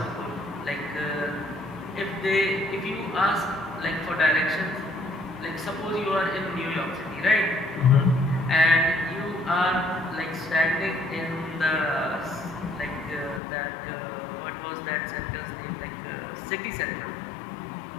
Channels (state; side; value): drops out; right; at 13.4 s